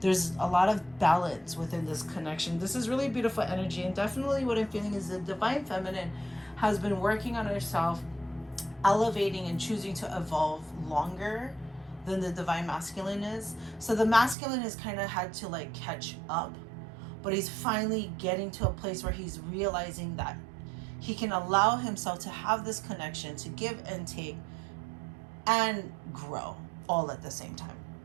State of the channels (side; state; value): left; drops out; at 14.4 s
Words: There's a lot of balance within this connection. This is really beautiful energy, and definitely what I'm feeling is the divine feminine has been working on herself, elevating and choosing to evolve longer than the divine masculine is. So the masculine has kind of had to like catch up, but he's finally getting to a place where he's realizing that he can allow himself to have this connection, to give and take and grow all at the same time